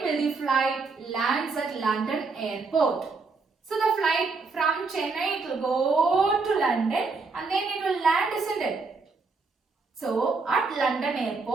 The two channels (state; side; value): quieter; left; 4.2 dB